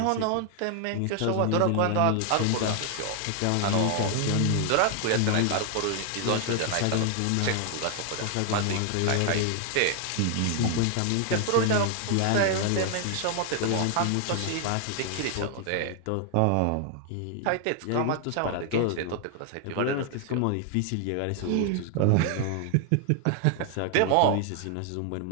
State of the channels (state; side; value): different; both; correlation 0.00